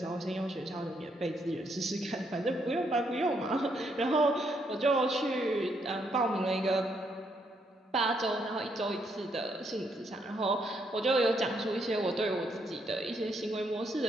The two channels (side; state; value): both; normal; correlation 0.75